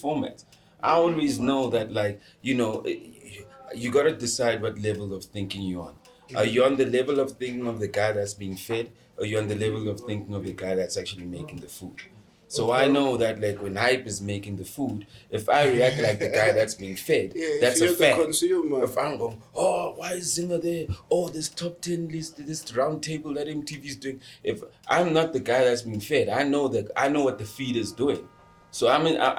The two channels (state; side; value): identical; both; correlation 1.00